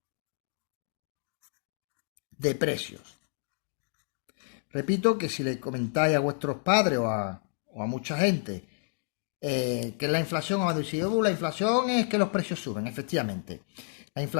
de precios. Repito que si le comentáis a vuestros padres o a mucha gente que es la inflación, os va a decir, la inflación es que los precios suben, efectivamente. La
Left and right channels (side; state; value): right; silent; digital silence